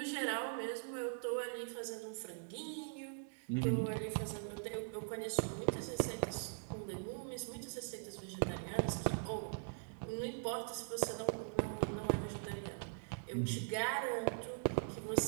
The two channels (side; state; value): left; silent; digital silence